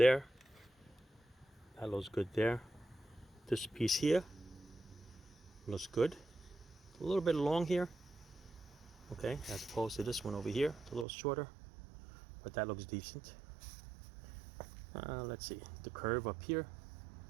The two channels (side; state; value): left; drops out; at 11.1 s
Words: That looks good there. This piece here looks good. A little bit long here. Okay, as opposed to this one over here. It's a little shorter, but that looks decent. Let's see, the curve up here.